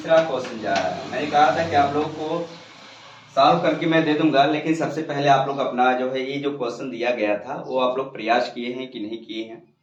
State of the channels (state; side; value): identical; both; correlation 1.00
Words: क्वेश्चन जा रहा है। मैंने कहा था कि आप लोग को सॉल्व करके मैं दे दूंगा, लेकिन सबसे पहले आप लोग अपना जो है ये जो क्वेश्चन दिया गया था वो आप लोग प्रयास किए हैं कि नहीं किए हैं